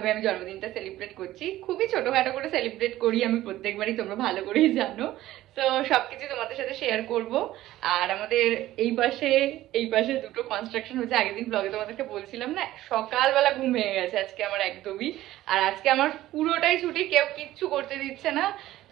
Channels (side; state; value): left; quieter; 15.1 dB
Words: আমি জন্মদিনটা সেলিব্রেট করছি। খুবই ছোটখাটো করে সেলিব্রেট করি আমি প্রত্যেকবারই, তোমরা ভালো করেই জানো। তো সবকিছু তোমাদের সাথে শেয়ার করব। আর আমাদের এই পাশে দুটো কনস্ট্রাকশন হচ্ছে। আগের দিন ব্লগে তোমাদেরকে বলছিলাম না, সকালবেলা ঘুম ভেঙে গেছে আজকে আমার একদমই। আর আজকে আমার পুরোটাই ছুটি, কেউ কিচ্ছু করতে দিচ্ছে না।